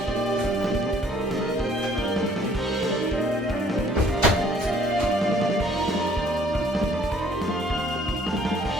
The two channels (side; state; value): both; normal; correlation 0.60